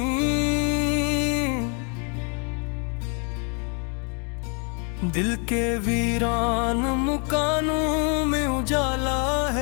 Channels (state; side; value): quieter; right; 38.1 dB